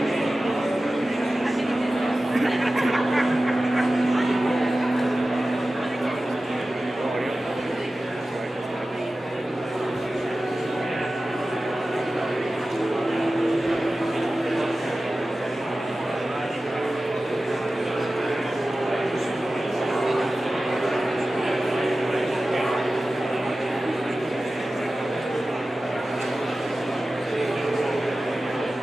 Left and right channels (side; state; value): both; normal; correlation 0.95